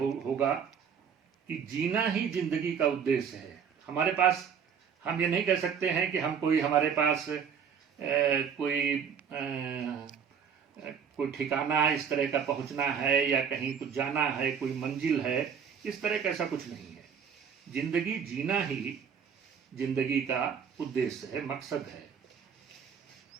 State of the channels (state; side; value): quieter; left; 7.1 dB